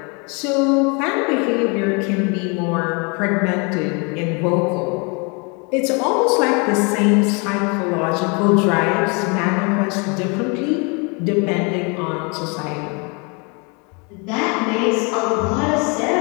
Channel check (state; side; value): quieter; right; 32.0 dB